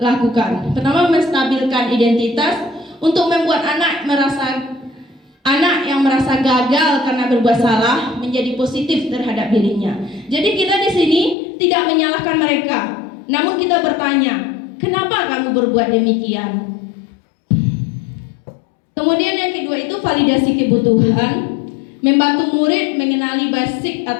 Pertama, menstabilkan identitas untuk membuat anak yang merasa gagal karena berbuat salah menjadi positif terhadap dirinya. Jadi kita di sini tidak menyalahkan mereka, namun kita bertanya, kenapa kamu berbuat demikian? Kemudian yang kedua itu validasi kebutuhan, membantu murid mengenali basic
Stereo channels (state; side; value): drops out; right; at 11.4 s